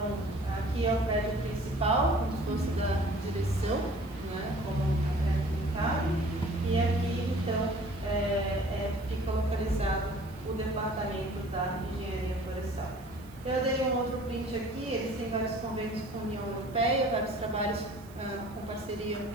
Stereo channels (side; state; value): right; noise; hiss, 25 dB below the sound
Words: aqui é o prédio principal, como se fosse da direção, como é clicável, e aqui então fica localizado o departamento da engenharia florestal. Eu dei um outro print aqui, eles têm vários convênios com a União Europeia, vários trabalhos com parceria